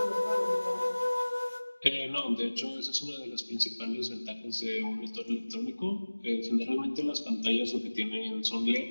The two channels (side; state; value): both; inverted; correlation -1.00